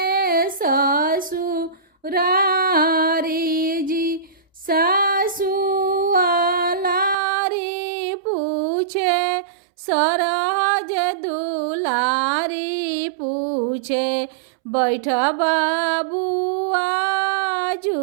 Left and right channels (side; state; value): left; drops out; at 7.2 s